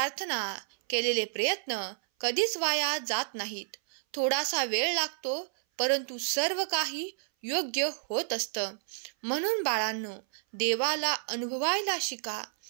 केलेले प्रयत्न कधीच वाया जात नाहीत. थोडासा वेळ लागतो, परंतु सर्व काही योग्य होत असतं. म्हणून बाळांनो, देवाला अनुभवायला शिका.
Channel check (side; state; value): left; silent; 58 dB below the other